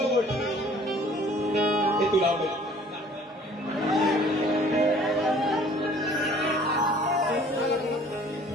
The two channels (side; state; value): both; normal; correlation 0.53